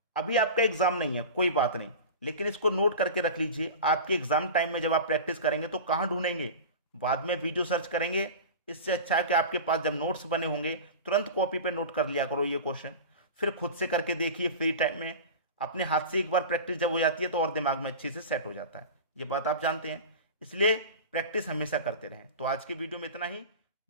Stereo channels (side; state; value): both; inverted; correlation -0.31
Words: अभी आपका एग्जाम नहीं है, कोई बात नहीं, लेकिन इसको नोट करके रख लीजिए। आपके एग्जाम टाइम में जब आप प्रैक्टिस करेंगे तो कहां ढूंढेंगे? बाद में वीडियो सर्च करेंगे। इससे अच्छा है कि आपके पास जब नोट्स बने होंगे तुरंत कॉपी पे नोट कर लिया करो ये क्वेश्चन, फिर खुद से करके देखिए फ्री टाइम में। अपने हाथ से एक बार प्रैक्टिस जब हो जाती है तो और दिमाग में अच्छे से सेट हो जाता है, ये बात आप जानते हैं। इसलिए प्रैक्टिस हमेशा करते रहें। तो आज की वीडियो में इतना ही,